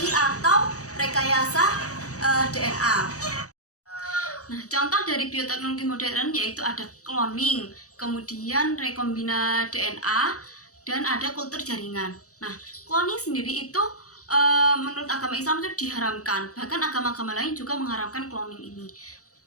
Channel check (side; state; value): right; late; 0.66 ms